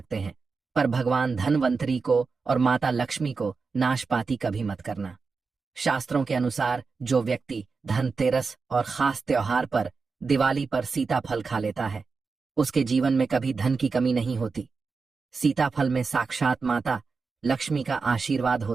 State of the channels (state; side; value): quieter; left; 4.7 dB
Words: हैं, पर भगवान धनवंतरी को और माता लक्ष्मी को नाशपाती कभी मत करना। शास्त्रों के अनुसार जो व्यक्ति धनतेरस और खास त्योहार पर दिवाली पर सीताफल खा लेता है, उसके जीवन में कभी धन की कमी नहीं होती। सीताफल में साक्षात माता लक्ष्मी का आशीर्वाद